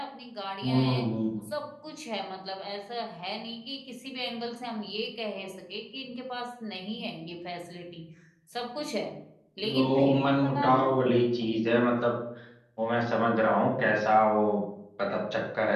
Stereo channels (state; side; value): identical; both; correlation 1.00